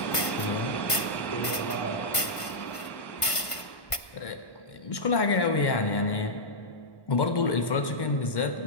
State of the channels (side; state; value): right; late; 1.5 ms